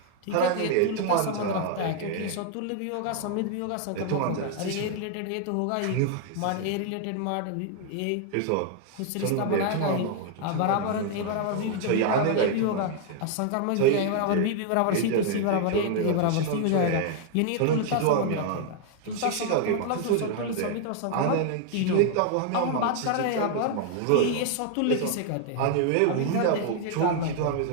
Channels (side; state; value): both; different; correlation 0.00